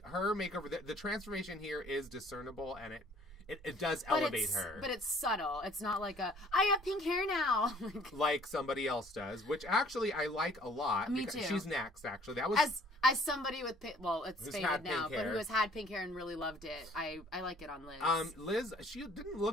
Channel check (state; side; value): normal; both; correlation 0.56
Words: her makeover, the transformation here is discernible, and it does elevate her. But it's subtle. It's not like I have pink hair now. like somebody else does, which actually I like a lot. Me too. She's next, actually. That was... As somebody with it's faded now, but who has had pink hair and really loved it, I like it on Liz. Liz, she didn't